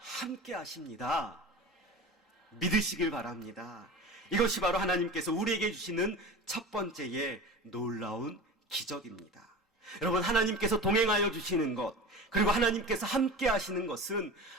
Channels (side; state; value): both; normal; correlation 0.32